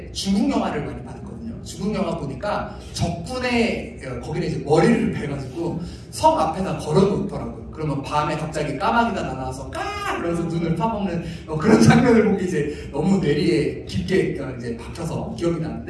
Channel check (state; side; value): identical; both; correlation 1.00